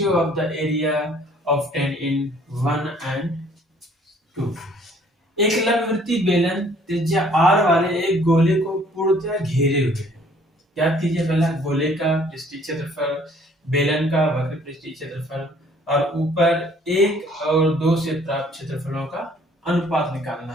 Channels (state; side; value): normal; both; correlation 0.58